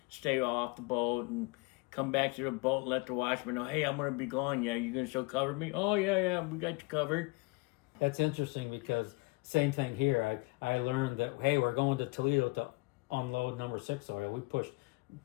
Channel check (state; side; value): quieter; right; 26.8 dB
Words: stay off the boat and come back to the boat and let the watchman know, hey, I'm going to be gone. Yeah, you going to still cover me? Oh, yeah, we got you covered. That's interesting because same thing here. I learned that, hey, we're going to Toledo to unload number 6 oil. We pushed